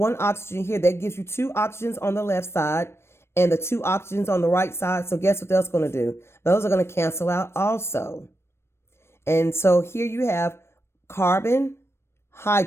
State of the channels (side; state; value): right; late; 0.12 ms